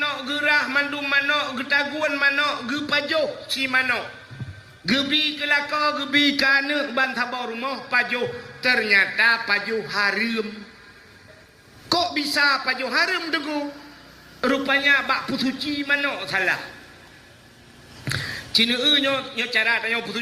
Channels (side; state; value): both; identical; correlation 1.00